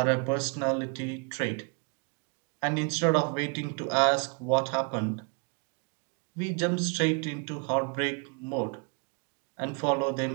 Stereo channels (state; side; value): quieter; left; 34.6 dB